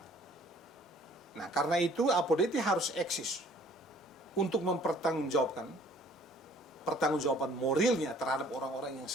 Nah, karena itu Apodeti harus eksis untuk mempertanggungjawabkan pertanggungjawaban moralnya terhadap orang-orang yang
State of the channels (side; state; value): both; normal; correlation 0.56